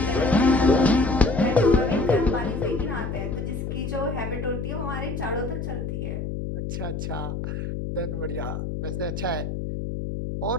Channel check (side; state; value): left; noise; hum, 4 dB below the sound